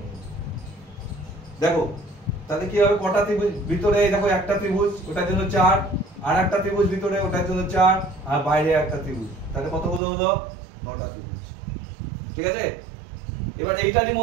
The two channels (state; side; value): drops out; left; at 10.0 s